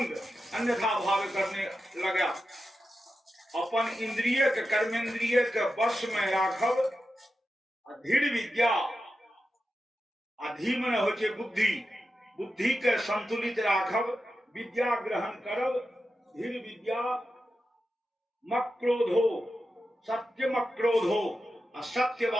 अन्यथा भाव करने लगा। अपन इंद्रिय के कर्मेंद्रिय के वश में राखब। धीर विद्या, अधी माने होइ छै बुद्धि, बुद्धि के संतुलित राखब। विद्या ग्रहण करब। धीर विद्या मक्रोधो, सत्य मक्रोधो, असत्य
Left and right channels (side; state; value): both; normal; correlation 0.90